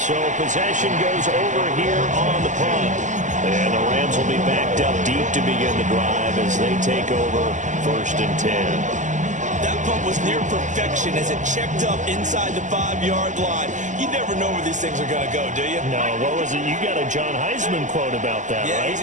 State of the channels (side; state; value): left; late; 0.36 ms